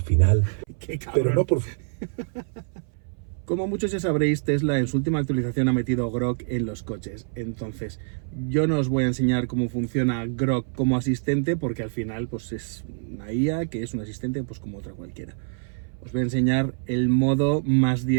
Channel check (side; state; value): left; silent; 59 dB below the other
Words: final... ¡Qué cabrón! Pero no por... Como muchos ya sabréis, Tesla en su última actualización ha metido Grok en los coches. Entonces, yo no os voy a enseñar cómo funciona Grok como asistente, porque al final pues es una IA que es un asistente pues como otra cualquiera. Os voy a enseñar el modo más